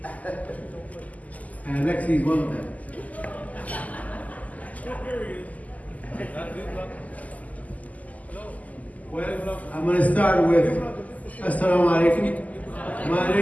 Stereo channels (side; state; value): right; late; 0.076 ms